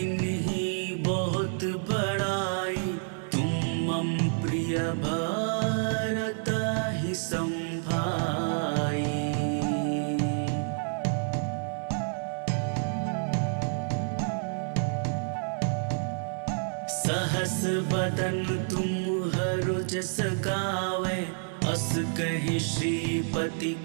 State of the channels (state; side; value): silent; left; 59 dB below the other